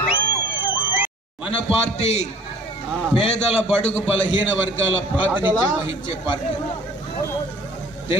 మన పార్టీ పేదల, బడుగు, బలహీన వర్గాల ప్రాతినిధ్యం వహించే పార్టీ.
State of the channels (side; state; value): both; normal; correlation 0.50